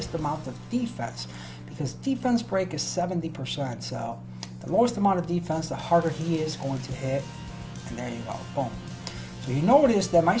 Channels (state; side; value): identical; both; correlation 1.00